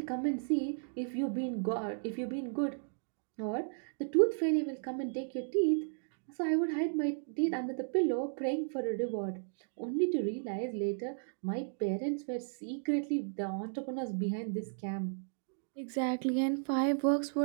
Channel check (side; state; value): left; silent; digital silence